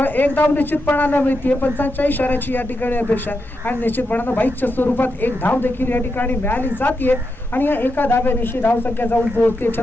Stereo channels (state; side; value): normal; both; correlation 0.86